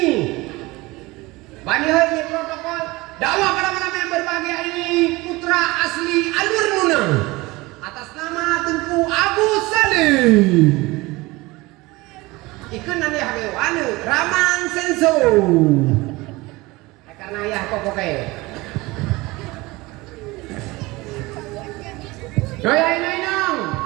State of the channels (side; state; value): left; quieter; 21.8 dB